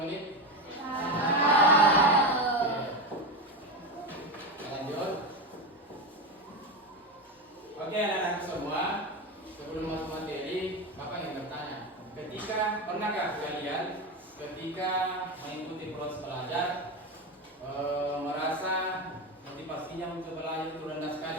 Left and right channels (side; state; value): both; normal; correlation 0.16